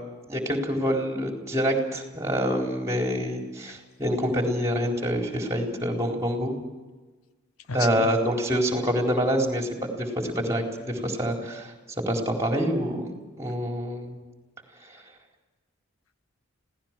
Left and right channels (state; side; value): normal; both; correlation 0.57